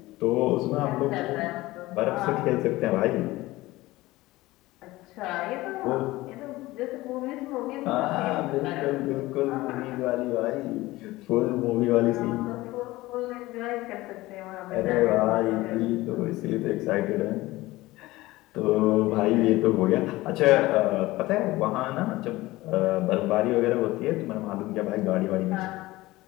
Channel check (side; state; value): right; quieter; 18.8 dB